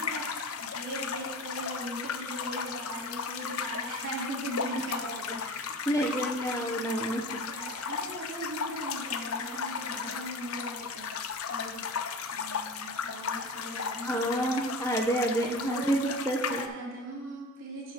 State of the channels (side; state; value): both; normal; correlation 0.33